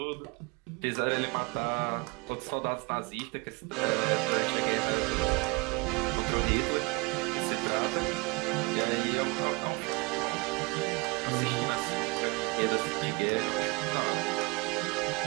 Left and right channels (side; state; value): left; quieter; 27.2 dB